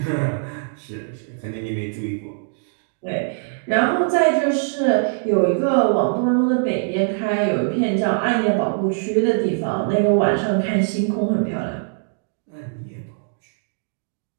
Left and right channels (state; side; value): silent; left; digital silence